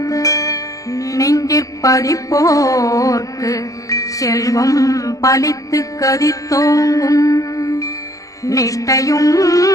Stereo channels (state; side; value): late; right; 0.16 ms